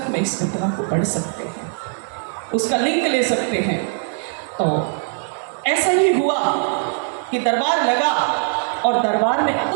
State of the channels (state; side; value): silent; left; 58 dB below the other